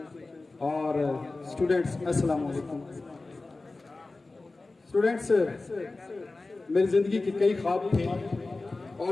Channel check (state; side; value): quieter; right; 3.4 dB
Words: और स्टूडेंट्स, अस्सलाम वालेकुम। स्टूडेंट्स, मेरी ज़िंदगी के कई ख्वाब थे